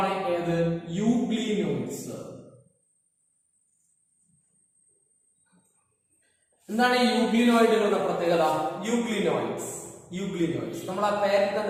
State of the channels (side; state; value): both; identical; correlation 1.00